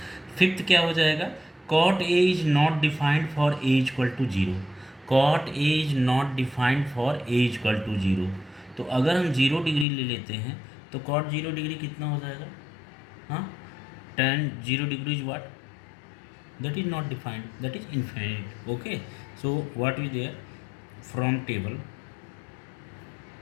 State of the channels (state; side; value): drops out; right; at 9.9 s